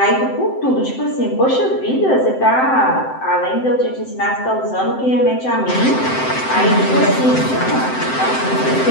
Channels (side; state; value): right; late; 7.8 ms